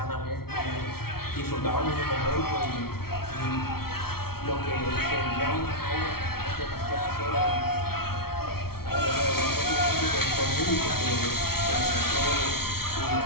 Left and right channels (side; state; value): right; late; 0.94 ms